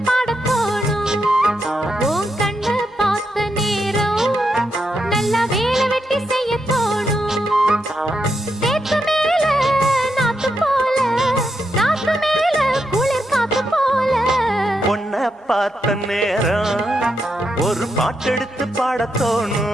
ஒரு பாட்டெடுத்து பாடத்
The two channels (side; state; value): both; normal; correlation 0.83